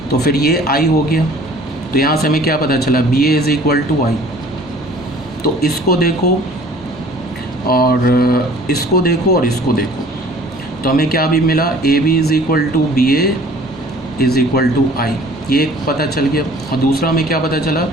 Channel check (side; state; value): both; normal; correlation 0.51